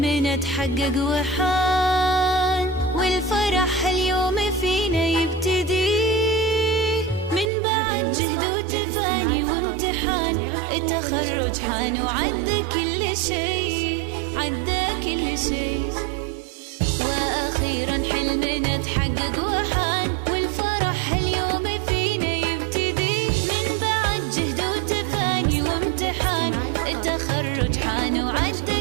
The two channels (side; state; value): left; drops out; at 7.5 s